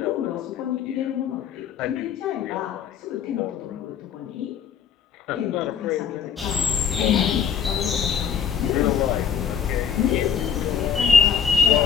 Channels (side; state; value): right; quieter; 7.7 dB